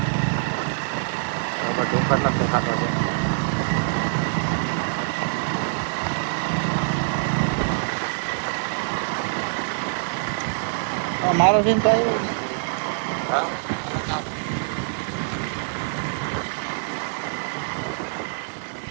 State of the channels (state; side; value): silent; left; 62 dB below the other